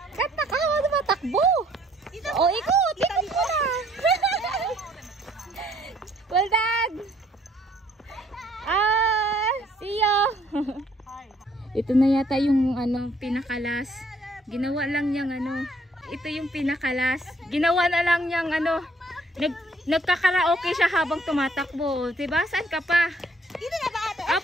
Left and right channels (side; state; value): both; normal; correlation 0.63